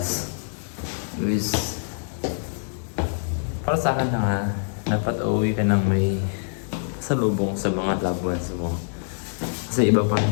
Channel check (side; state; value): right; silent; 62 dB below the other